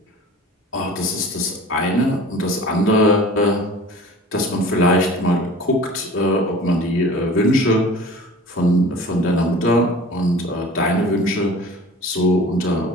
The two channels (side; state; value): both; normal; correlation 0.42